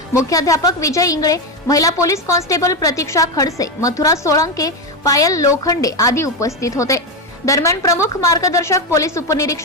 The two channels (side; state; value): both; normal; correlation 0.11